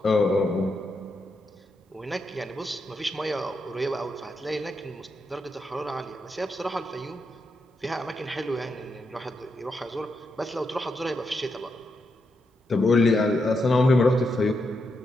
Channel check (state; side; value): normal; both; correlation 0.83